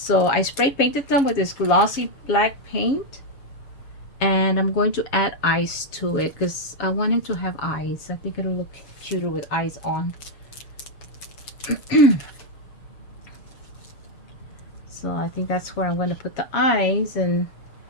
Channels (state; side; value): late; right; 7.2 ms